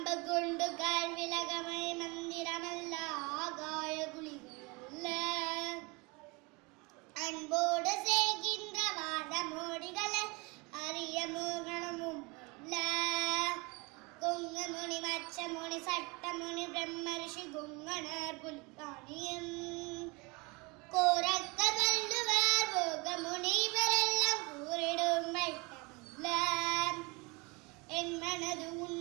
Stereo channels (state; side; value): quieter; left; 27.1 dB